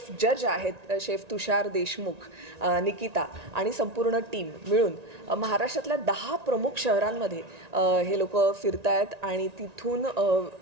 जज आहेत, शेफ तुषार देशमुख, निकिता आणि संपूर्ण टीम मिळून महाराष्ट्रातल्या 10 प्रमुख शहरांमध्ये हे लोक फिरतायत आणि तिथून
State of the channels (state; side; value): late; left; 1.9 ms